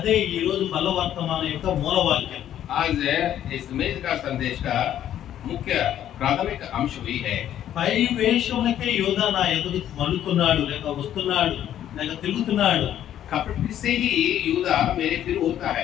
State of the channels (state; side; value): quieter; right; 11.1 dB